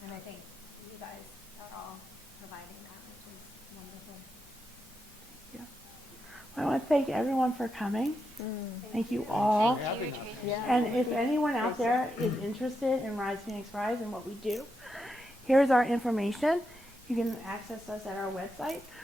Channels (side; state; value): both; normal; correlation 0.85